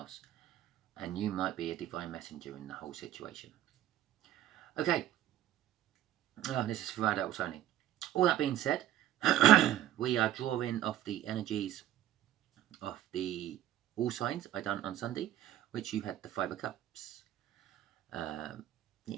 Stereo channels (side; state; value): left; quieter; 12.6 dB